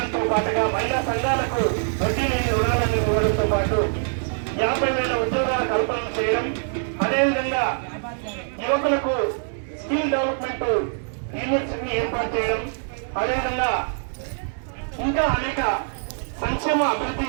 పాటుగా మహిళా సంఘాలకు వడ్డీ లేని రుణాలను ఇవ్వడంతో పాటు 50,000 ఉద్యోగాల కల్పన చేయడం, అదేవిధంగా యువకులకు స్కిల్ డెవలప్మెంట్ యూనివర్సిటీని ఏర్పాటు చేయడం, అదేవిధంగా ఇంకా అనేక సంక్షేమ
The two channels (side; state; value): left; silent; digital silence